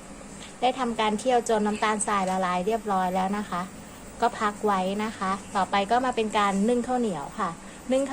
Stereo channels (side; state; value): both; identical; correlation 1.00